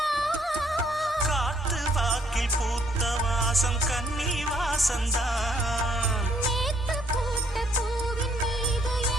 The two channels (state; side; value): normal; both; correlation 0.68